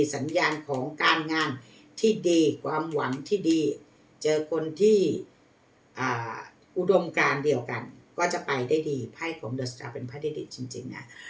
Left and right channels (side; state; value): both; identical; correlation 1.00